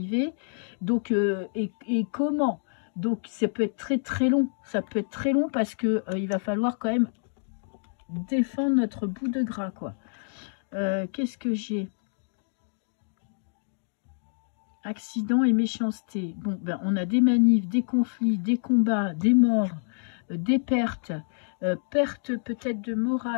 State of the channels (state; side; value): silent; right; digital silence